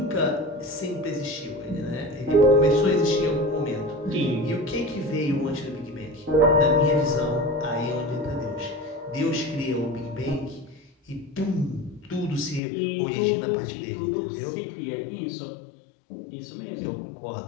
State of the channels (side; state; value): right; drops out; at 12.6 s